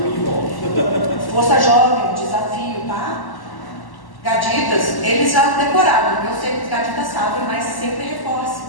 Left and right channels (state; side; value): late; right; 1.1 ms